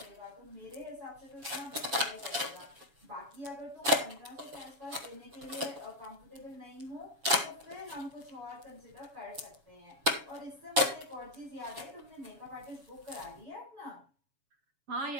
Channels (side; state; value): left; late; 7.2 ms